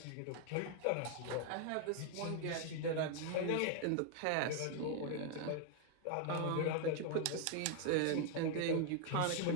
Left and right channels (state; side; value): different; both; correlation 0.00